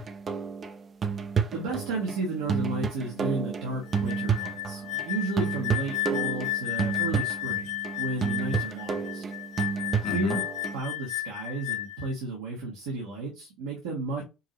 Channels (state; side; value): normal; both; correlation 0.34